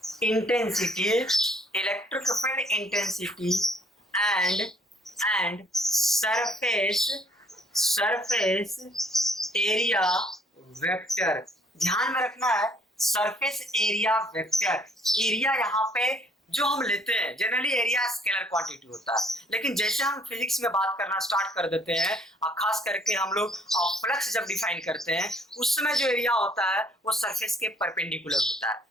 and surface area vector. ध्यान में रखना है, सरफेस एरिया वेक्टर। एरिया यहाँ पे जो हम लेते हैं, जनरली एरिया स्केलर क्वांटिटी होता है, लेकिन जैसे हम फिजिक्स में बात करना स्टार्ट कर देते हैं, और खास करके हम लोग फ्लक्स जब डिफाइन करते हैं, उस समय जो एरिया होता है वो सरफेस के परपेंडिकुलर होता है।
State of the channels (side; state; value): both; normal; correlation 0.62